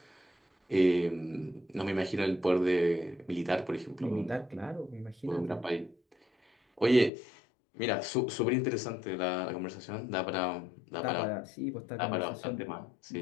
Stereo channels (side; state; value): right; drops out; at 7.1 s